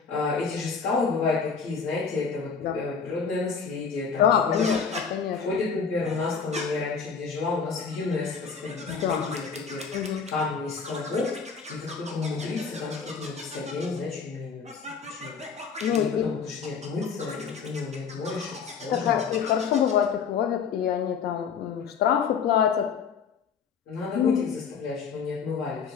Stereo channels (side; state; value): right; quieter; 6.0 dB